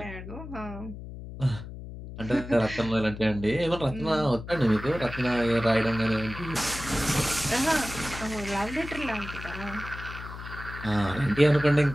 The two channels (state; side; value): noise; left; hum, 11 dB below the sound